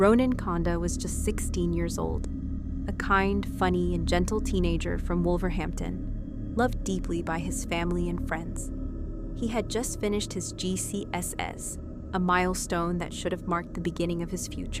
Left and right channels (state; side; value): identical; both; correlation 1.00